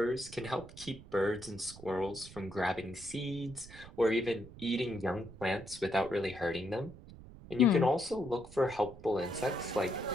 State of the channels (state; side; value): noise; right; rumble, 17 dB below the sound